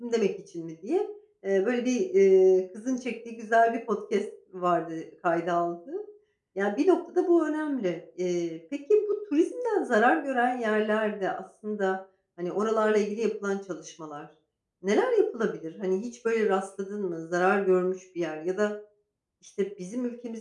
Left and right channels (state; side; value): identical; both; correlation 1.00